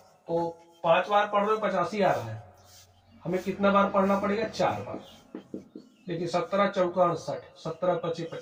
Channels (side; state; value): both; identical; correlation 1.00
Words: तो 5 बार पढ़ रहे हो 85 आ रहा है, हमें कितना बार पढ़ना पड़ेगा, 4 बार। देखिए 17 चौका 68, 17 25